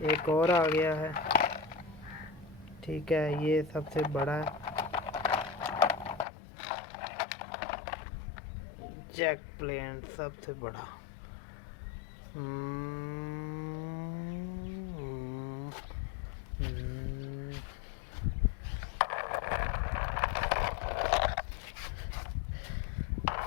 एक और आ गया है। ठीक है, ये सबसे बड़ा है जैक प्लेन, सबसे बड़ा।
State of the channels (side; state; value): right; drops out; at 6.2 s